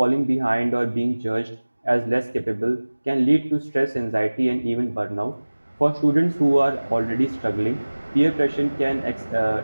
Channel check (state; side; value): inverted; both; correlation -1.00